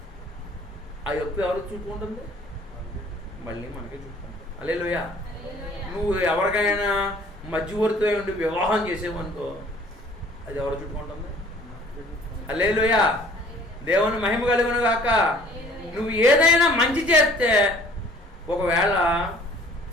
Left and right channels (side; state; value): both; normal; correlation 0.53